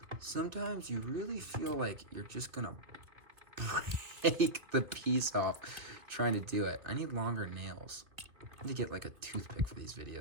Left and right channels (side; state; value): left; late; 2.4 ms